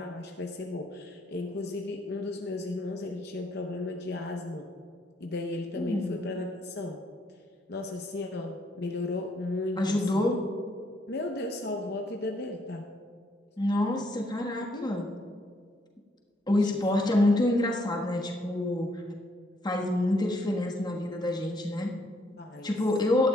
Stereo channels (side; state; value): both; normal; correlation 0.70